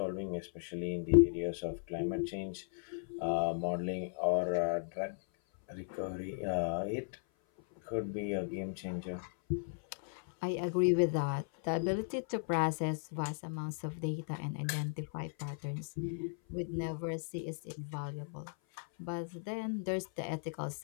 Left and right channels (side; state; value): right; silent; 54 dB below the other